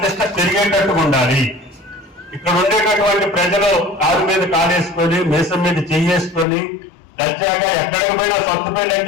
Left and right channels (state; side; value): drops out; right; at 6.5 s